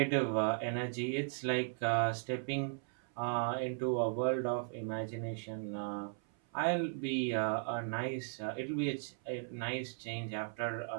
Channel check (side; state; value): left; silent; 53 dB below the other